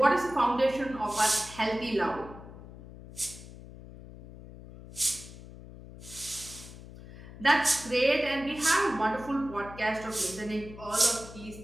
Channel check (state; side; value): noise; left; hum, 16 dB below the sound